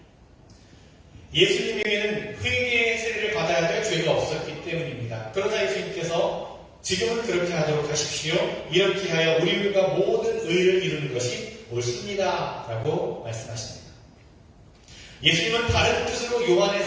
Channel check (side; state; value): both; identical; correlation 1.00